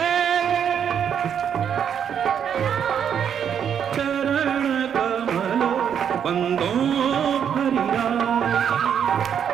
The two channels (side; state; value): left; quieter; 8.3 dB